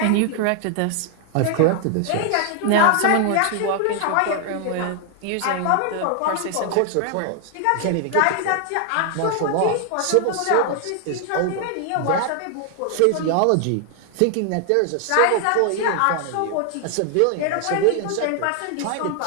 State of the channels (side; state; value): both; different; correlation 0.00